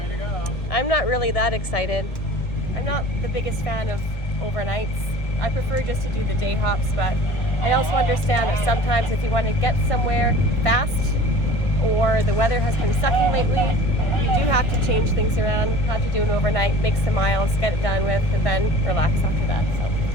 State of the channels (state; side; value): late; right; 1.9 ms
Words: to go. I'm not really that excited. I'm not the biggest fan of overnights. I prefer just to do the day hops, but I also understand that sometimes if you want to get somewhere fast or the weather has been sucking lately, you do have to change things around, have to do an overnight, make some miles, get it done with, and then relax after that.